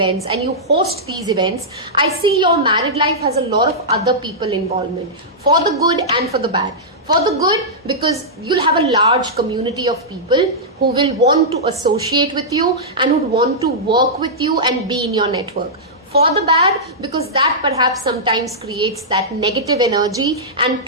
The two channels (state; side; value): normal; both; correlation -0.11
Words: and you host these events, I see your married life has a lot of other people involvement, for the good and for the bad. For the good, because you'll have a large community of people who will want to associate with you and would want to work with you and be in your network. For the bad, because that perhaps sometimes creates that negative energy and